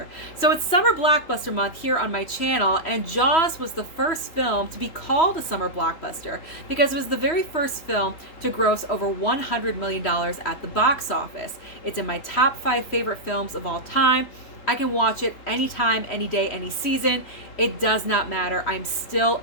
So it's summer blockbuster month here on my channel, and Jaws was the first film to be called a summer blockbuster because it was the very first film to gross over $100 million at the box office. It's in my top 5 favorite films of all time. I can watch it anytime, any day, any season. It does not matter. I'm still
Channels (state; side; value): late; right; 3.3 ms